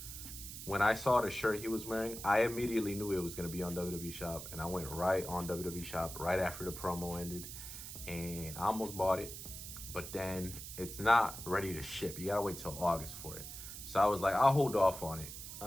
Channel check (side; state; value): right; noise; hiss, 10 dB below the sound